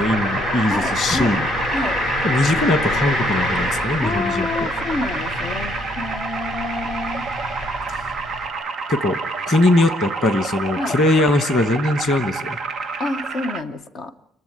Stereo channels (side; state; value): both; normal; correlation 0.68